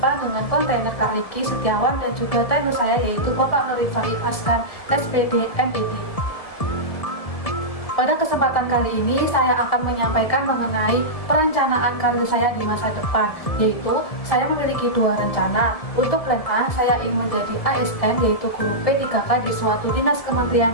dengan kontainer Kak Riki Setiawan dan juga trainer saya yaitu Bapak Nur Rifai Askan, SPD, MED. Pada kesempatan kali ini saya akan menyampaikan mengenai perencanaan karir saya di masa depan, yaitu saya memiliki dua rencana. Untuk plan A, saya ingin menjadi ASN yaitu guru P3K di suatu dinas Kementerian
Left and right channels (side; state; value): right; late; 1.7 ms